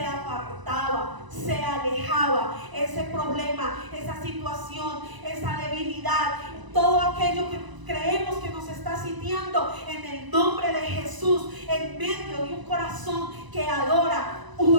apartaba, se alejaba. Ese problema, esa situación, esa debilidad, todo aquello que creemos que nos está sitiando, en el nombre de Jesús, en medio de un corazón que adora,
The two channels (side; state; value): left; late; 1.0 ms